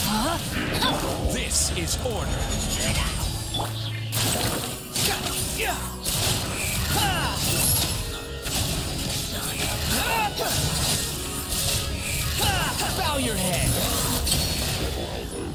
Huh? This is order. Bow your head.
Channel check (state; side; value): identical; both; correlation 1.00